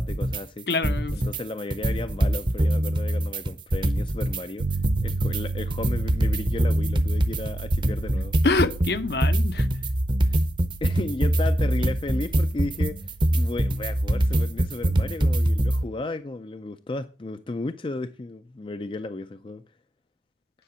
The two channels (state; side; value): normal; both; correlation 0.86